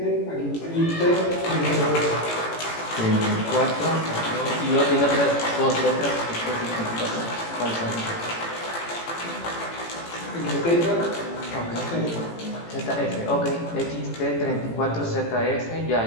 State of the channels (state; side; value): late; right; 18 ms